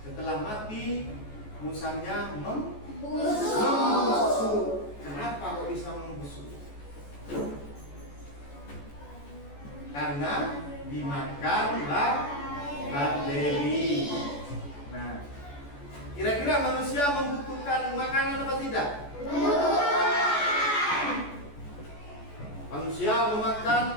Setelah mati, musangnya membusuk. Kenapa kok bisa membusuk? Karena dimakan bakteri. Nah, kira-kira manusia membutuhkan makanan apa tidak? Manusia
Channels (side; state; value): right; late; 14 ms